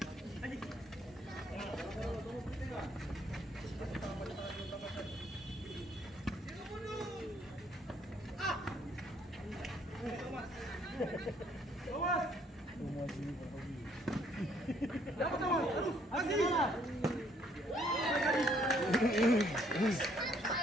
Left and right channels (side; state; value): both; normal; correlation 0.65